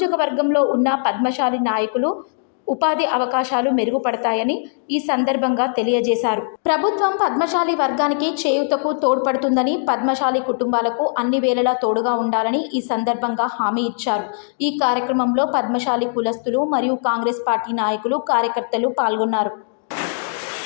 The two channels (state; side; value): silent; right; digital silence